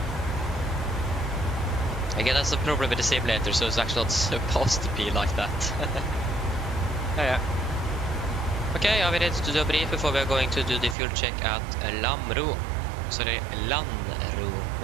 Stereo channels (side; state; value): left; drops out; at 11.0 s